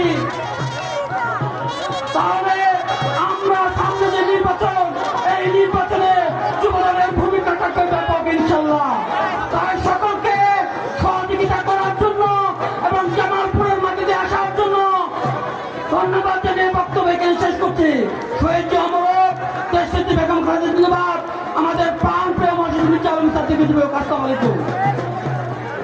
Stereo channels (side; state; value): both; identical; correlation 1.00